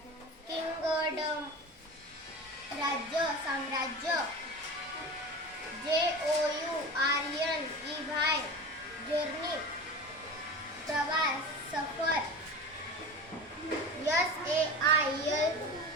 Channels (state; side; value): normal; both; correlation 0.31